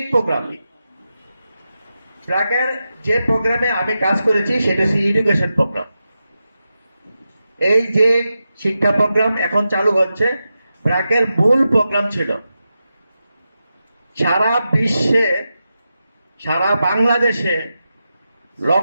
প্রোগ্রাম, ব্র্যাকের যে প্রোগ্রামে আমি কাজ করেছি সেটা হচ্ছে এডুকেশন প্রোগ্রাম। এই যে শিক্ষা প্রোগ্রাম এখন চালু হচ্ছে, ব্র্যাকের মূল প্রোগ্রাম ছিল সারা বিশ্বে, সারা বাংলাদেশে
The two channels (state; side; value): inverted; both; correlation -0.90